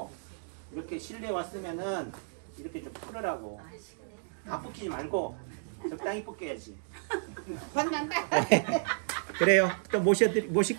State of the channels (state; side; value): silent; left; digital silence